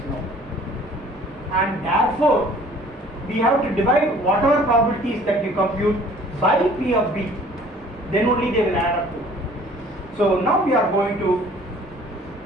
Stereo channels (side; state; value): both; normal; correlation 0.53